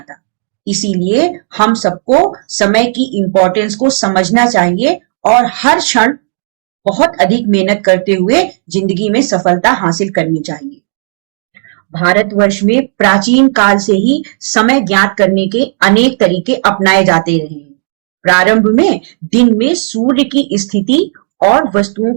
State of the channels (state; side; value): silent; left; digital silence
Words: इसीलिए हम सबको समय की इम्पोर्टेंस को समझना चाहिए और हर क्षण बहुत अधिक मेहनत करते हुए जिंदगी में सफलता हासिल करनी चाहिए। भारतवर्ष में प्राचीन काल से ही समय ज्ञात करने के अनेक तरीके अपनाए जाते रहे हैं। प्रारंभ में दिन में सूर्य की स्थिति और वस्तुओं